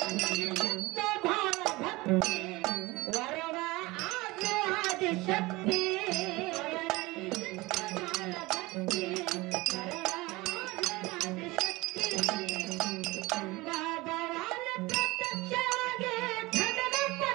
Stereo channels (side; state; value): left; quieter; 21.7 dB